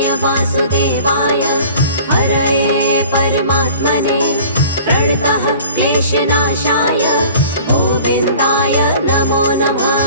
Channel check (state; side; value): inverted; both; correlation -0.46